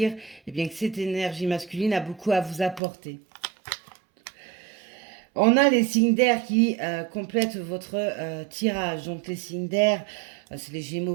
eh bien, que cette énergie masculine a beaucoup à vous apporter. On a les signes d'air qui complètent votre tirage. Donc les signes d'air, c'est les Gémeaux,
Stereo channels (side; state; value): left; drops out; at 2.8 s